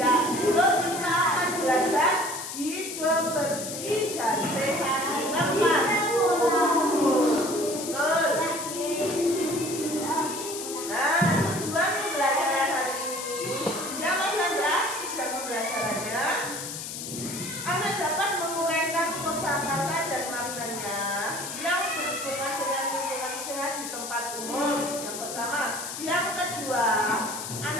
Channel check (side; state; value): left; noise; hiss, 7 dB below the sound